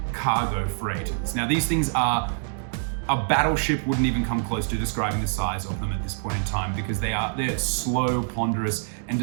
cargo freighters. Now these things are, a battleship wouldn't even come close to describing the size of them at this point in time, because they're slow, ponderous, and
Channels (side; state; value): left; silent; digital silence